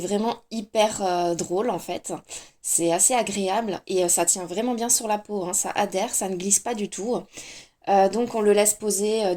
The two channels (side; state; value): both; identical; correlation 1.00